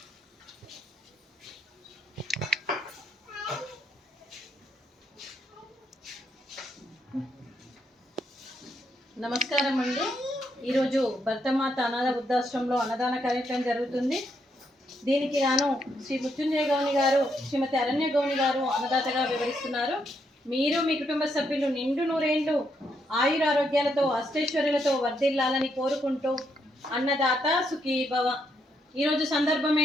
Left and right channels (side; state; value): both; normal; correlation 0.77